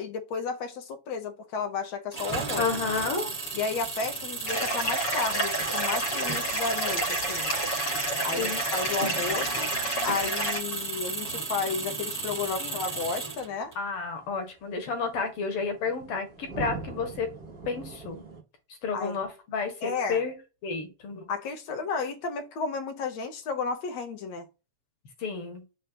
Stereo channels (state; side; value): late; right; 7.1 ms